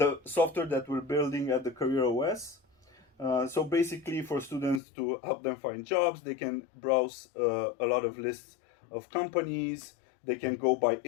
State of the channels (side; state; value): right; drops out; at 4.8 s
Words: software that we're building at the Career OS. So basically, for students to help them find jobs, they can browse a lot of lists of companies. They can go by